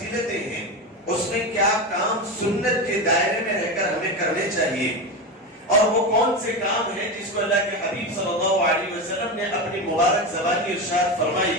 ہیں، اس میں کیا کام سنت کے دائرے میں رہ کر ہمیں کرنے چاہیے، اور وہ کون سے کام ہیں جس کو اللہ کے حبیب صلی اللہ علیہ وسلم نے اپنی مبارک زبانی ارشاد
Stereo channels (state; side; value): normal; both; correlation 0.19